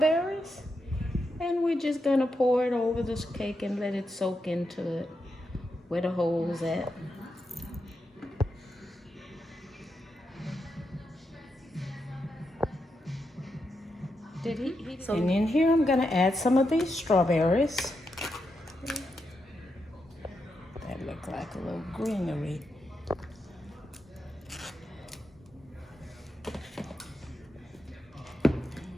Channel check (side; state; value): both; normal; correlation 0.85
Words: and we're just gonna pour it over this cake and let it soak into it where the hole's at. And in here I'm gonna add some of these strawberries. That look like a little greenery.